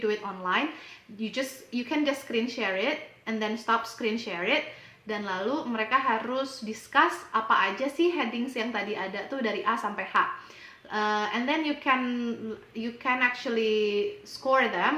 it online, you can just screen share it and then stop screen share it, dan lalu mereka harus discuss apa aja sih headings yang tadi ada tuh dari A sampai H. And then you can actually score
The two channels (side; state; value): both; identical; correlation 1.00